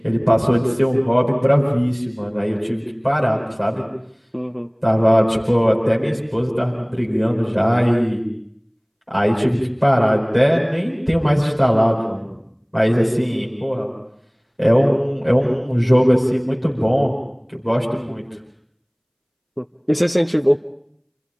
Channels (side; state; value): both; identical; correlation 1.00